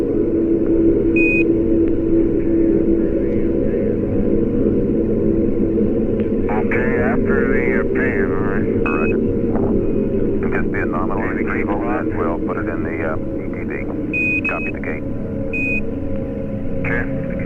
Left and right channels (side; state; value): both; identical; correlation 1.00